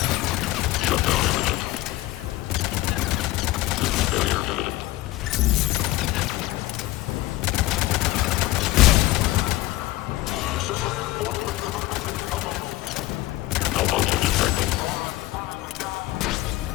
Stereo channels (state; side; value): quieter; right; 17.3 dB